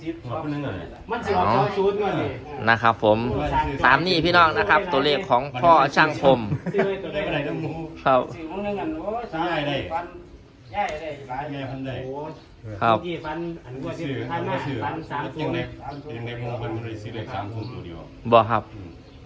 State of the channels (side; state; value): both; identical; correlation 1.00